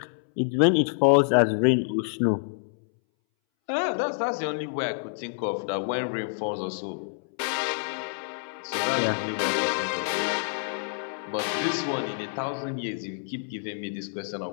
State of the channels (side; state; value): right; silent; 60 dB below the other